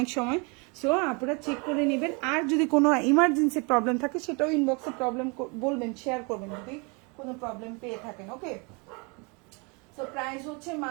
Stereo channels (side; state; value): left; quieter; 31.5 dB